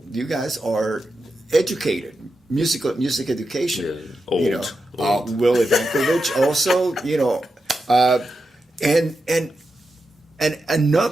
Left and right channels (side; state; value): both; normal; correlation 0.88